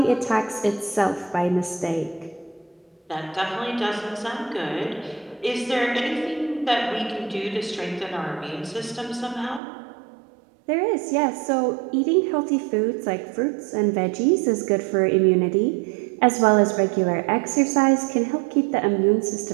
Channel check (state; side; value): drops out; left; at 9.6 s